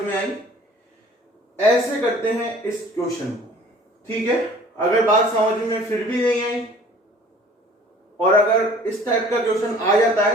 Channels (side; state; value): both; normal; correlation 0.50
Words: में आई। ऐसे करते हैं इस क्वेश्चन को। ठीक है, अगर बात समझ में फिर भी नहीं आई और अगर इस टाइप का क्वेश्चन आ जाता